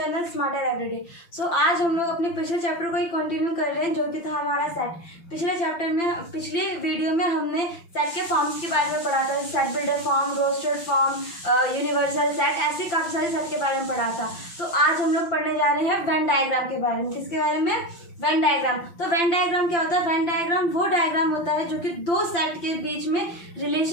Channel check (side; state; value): right; late; 5.9 ms